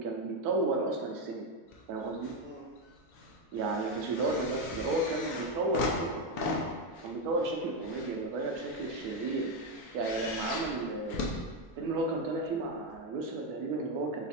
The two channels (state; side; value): normal; both; correlation 0.07